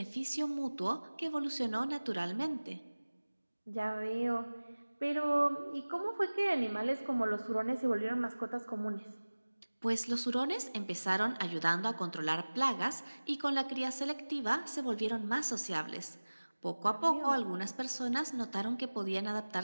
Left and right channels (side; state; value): both; inverted; correlation -1.00